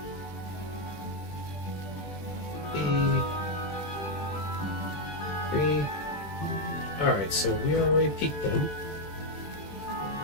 Alright, so we already peaked then.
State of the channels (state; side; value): late; right; 20 ms